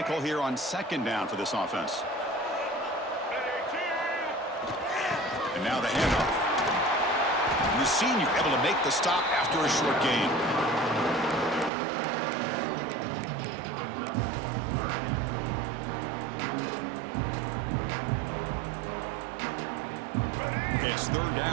call here on 2nd down for this offense? And now the handoff. And the senior able to make the stop after a short gain. Okay, it's 3rd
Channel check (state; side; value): drops out; left; at 11.7 s